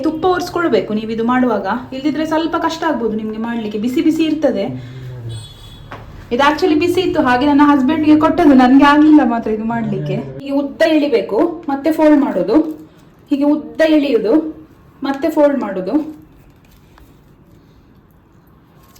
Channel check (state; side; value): identical; both; correlation 1.00